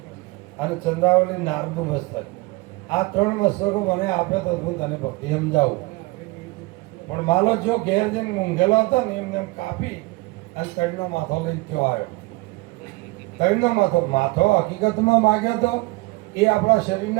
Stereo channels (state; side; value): quieter; left; 23.5 dB